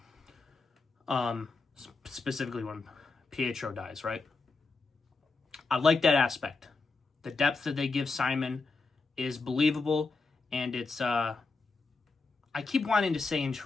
Specifically when Pietro dies, right? I like that aspect. The depth that they give Simon is believable, and it's I keep wanting to say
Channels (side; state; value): right; quieter; 4.0 dB